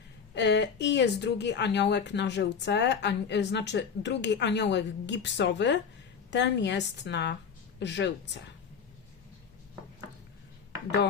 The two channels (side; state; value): right; quieter; 6.5 dB